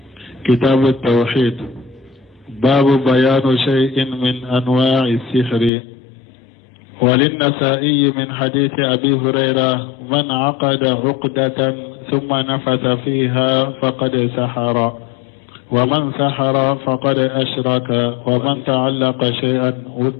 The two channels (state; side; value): drops out; right; at 5.7 s